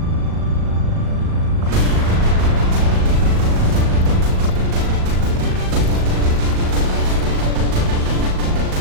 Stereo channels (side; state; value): left; late; 38 ms